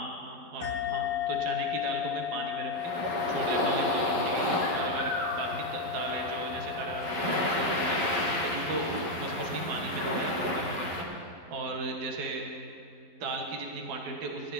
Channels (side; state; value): left; late; 11 ms